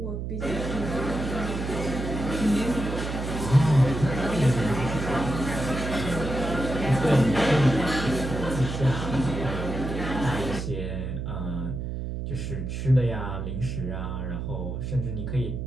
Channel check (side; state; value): right; noise; hum, 4 dB below the sound